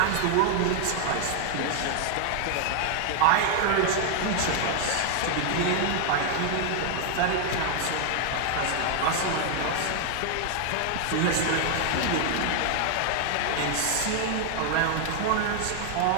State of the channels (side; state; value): both; different; correlation 0.00